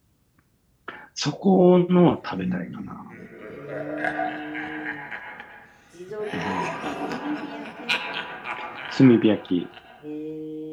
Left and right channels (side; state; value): both; identical; correlation 1.00